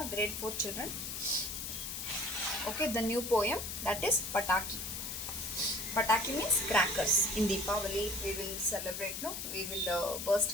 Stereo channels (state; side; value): noise; left; hiss, 5 dB below the sound